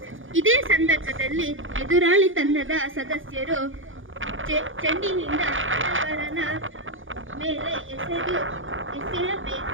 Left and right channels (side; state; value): left; late; 0.58 ms